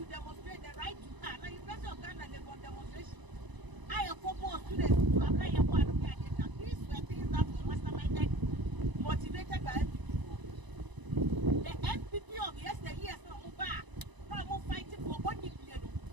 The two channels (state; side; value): late; left; 1.0 ms